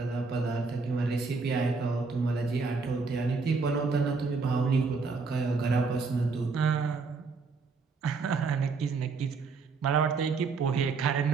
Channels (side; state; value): left; quieter; 4.5 dB